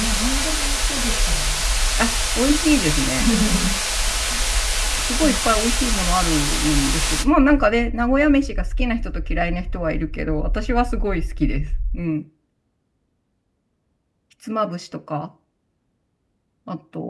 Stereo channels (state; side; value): identical; both; correlation 1.00